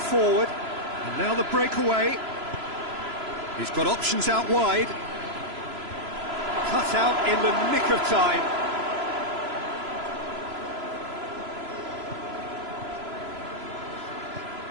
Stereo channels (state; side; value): late; left; 3.0 ms